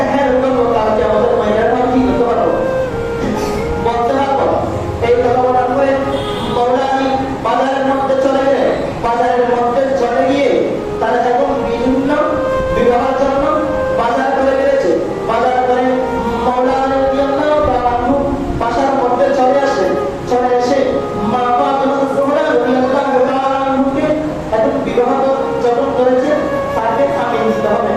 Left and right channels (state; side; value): identical; both; correlation 1.00